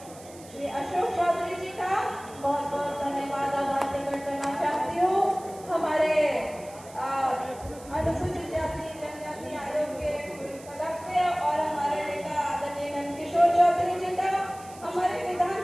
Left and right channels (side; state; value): right; noise; hiss, 20 dB below the sound